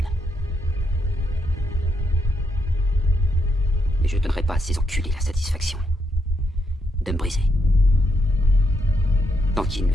Mais je ne donnerai pas à ces enculés la satisfaction de me briser. Tant qu'ils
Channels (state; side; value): normal; both; correlation 0.79